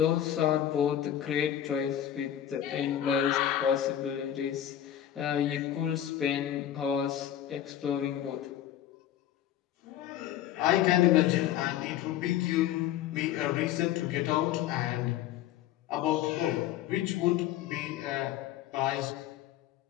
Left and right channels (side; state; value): right; quieter; 11.3 dB